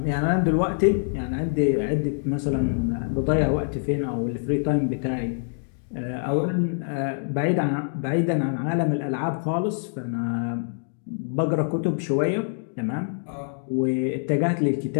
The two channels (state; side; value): silent; right; digital silence